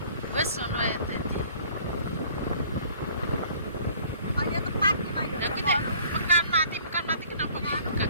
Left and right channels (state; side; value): inverted; both; correlation -0.54